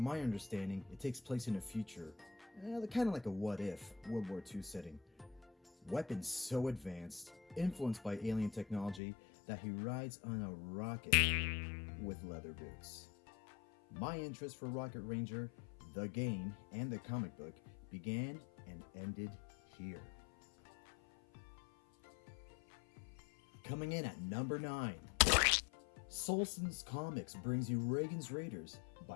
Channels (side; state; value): right; drops out; at 9.0 s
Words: my understanding, it takes place in a future, kind of like a what-if World War II setting. Weapons so advanced, influenced by alien technology, that he rides on a rocket with leather boots. My interest for Rocket Ranger, the game, and the comic book began and ended here. Coming in at number 9. Solson's Comics brings you Reagans Raiders